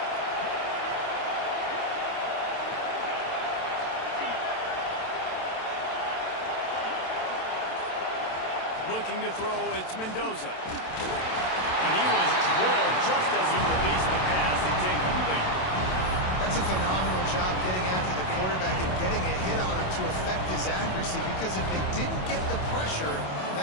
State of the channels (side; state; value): right; late; 27 ms